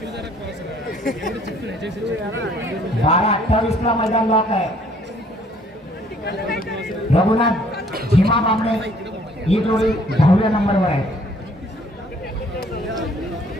बारा 28 ला मैदान लॉक आहे. रघुनाथ झिमा बामणे ही जोडी 10व्या नंबरवर आहे.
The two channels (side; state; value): both; normal; correlation 0.60